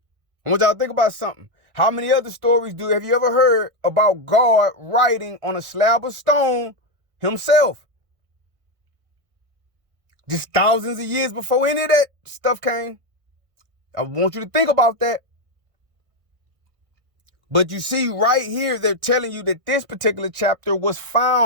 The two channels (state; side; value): late; left; 1.6 ms